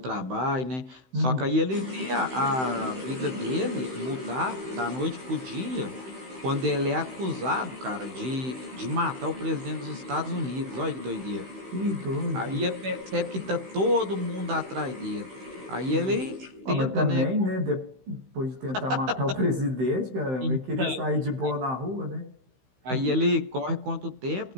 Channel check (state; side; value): late; left; 16 ms